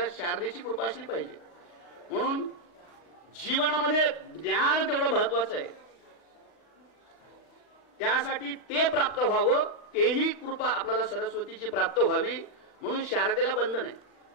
शारदेची कृपा असली पाहिजे. म्हणून जीवनामध्ये ज्ञान तेवढं महत्वाचं आहे. त्यासाठी ते प्राप्त व्हावं, तेही कृपा आपल्याला सरस्वतीची प्राप्त व्हावी म्हणून शारदेला बंधन आहे.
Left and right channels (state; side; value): late; right; 39 ms